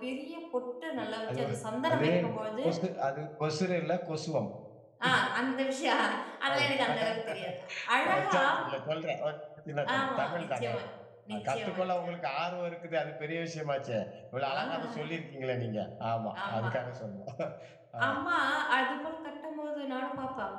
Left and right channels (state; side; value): identical; both; correlation 1.00